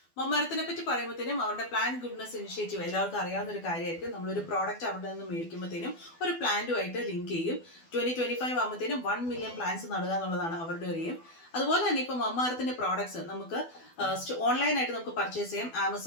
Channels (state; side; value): late; right; 12 ms